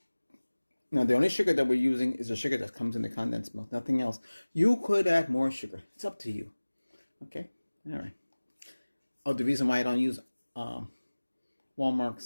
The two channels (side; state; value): both; inverted; correlation -1.00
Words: now the only sugar that we're using is the sugar that comes in the condensed milk, nothing else. You could add more sugar. It's up to you. Okay? All right. Oh, the reason why I don't use